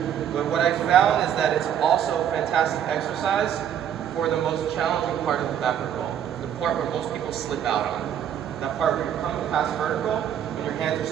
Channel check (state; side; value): quieter; left; 9.5 dB